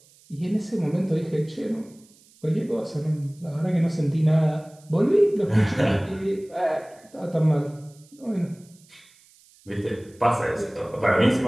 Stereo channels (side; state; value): right; noise; hiss, 28 dB below the sound